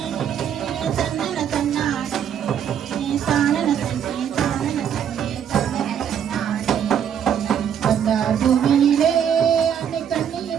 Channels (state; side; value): quieter; left; 8.7 dB